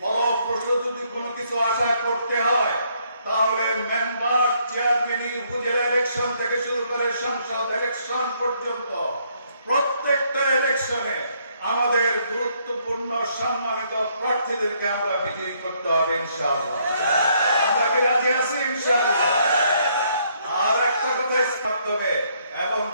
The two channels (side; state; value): both; inverted; correlation -0.70